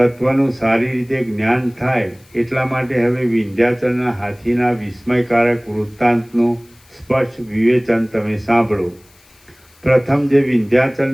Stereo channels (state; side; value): noise; left; hiss, 30 dB below the sound